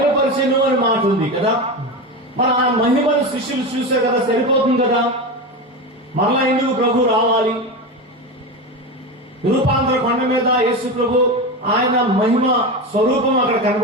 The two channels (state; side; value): normal; both; correlation 0.20